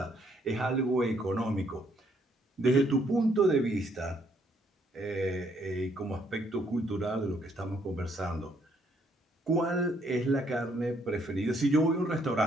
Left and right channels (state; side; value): normal; both; correlation 0.69